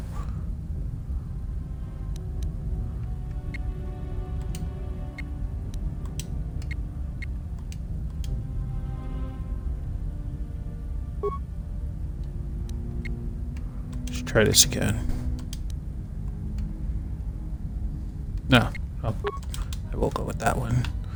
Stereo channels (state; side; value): identical; both; correlation 1.00